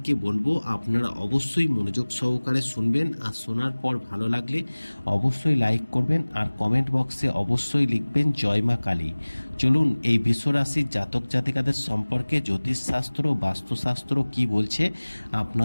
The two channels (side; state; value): both; inverted; correlation -1.00